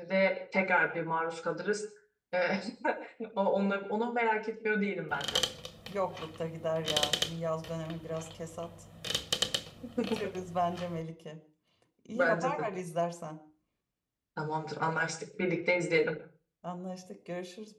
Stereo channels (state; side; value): identical; both; correlation 1.00